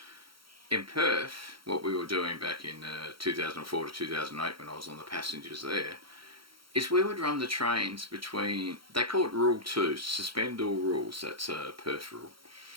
In Perth, what we were doing back in 2004 to 2008 when I was on the passengers there, is we would run the trains between, they call it Rule 2, suspend all rules, that's a Perth rule.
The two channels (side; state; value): left; late; 0.74 ms